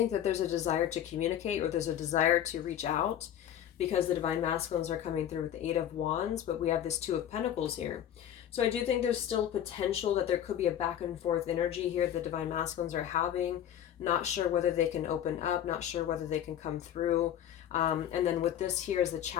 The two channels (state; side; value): quieter; right; 10.5 dB